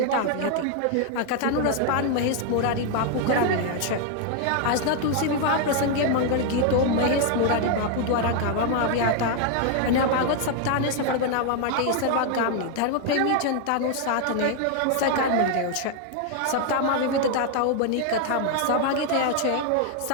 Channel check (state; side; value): different; both; correlation 0.00